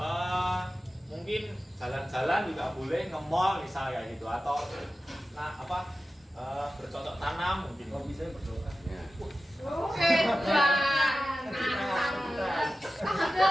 Mungkin jalan-jalan juga boleh, nge-mall misalnya gitu, atau bercocok tanam mungkin. Hobi saya berdoa.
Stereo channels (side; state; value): both; normal; correlation 0.94